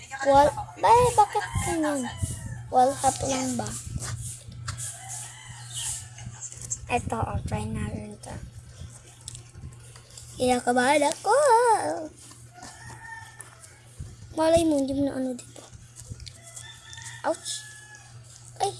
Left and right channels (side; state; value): both; identical; correlation 1.00